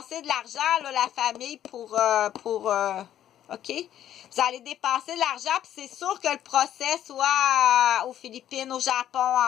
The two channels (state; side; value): quieter; right; 11.3 dB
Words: de l'argent, là, la famille, OK? Vous allez dépenser de l'argent, puis c'est sûr que le procès soit aux Philippines, au Japon,